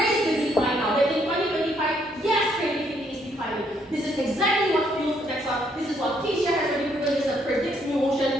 the decline now, that in 2025, yes, creativity is declining. This is exactly what fuels the next one. This is what Keisha has already proven, this predicts new motion,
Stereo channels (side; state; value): both; normal; correlation 0.70